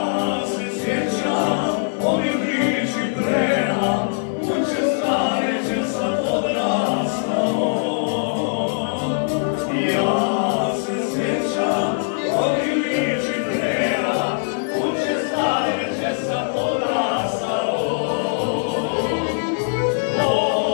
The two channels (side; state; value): right; silent; digital silence